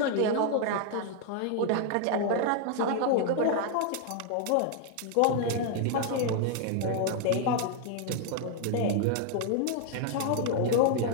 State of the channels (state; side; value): different; both; correlation 0.00